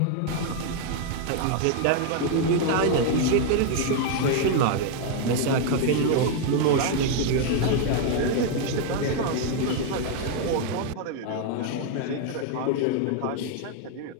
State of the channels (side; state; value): both; different; correlation 0.00